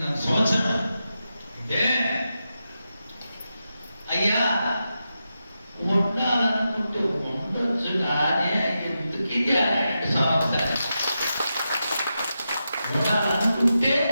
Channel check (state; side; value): inverted; both; correlation -0.89